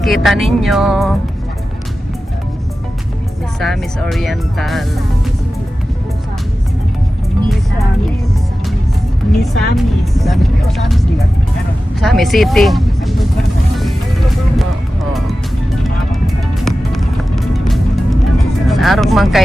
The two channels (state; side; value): normal; both; correlation 0.94